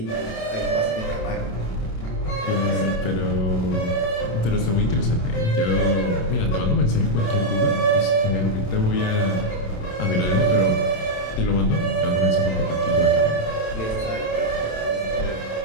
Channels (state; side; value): late; right; 27 ms